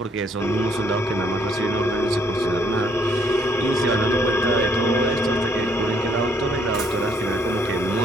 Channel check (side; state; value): both; normal; correlation 0.67